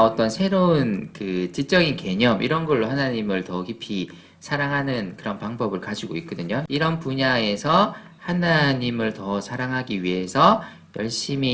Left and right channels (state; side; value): identical; both; correlation 1.00